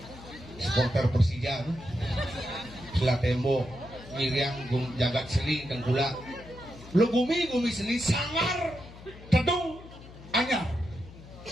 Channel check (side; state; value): left; noise; hum, 17 dB below the sound